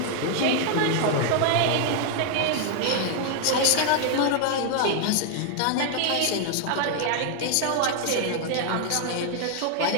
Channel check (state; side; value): different; both; correlation 0.00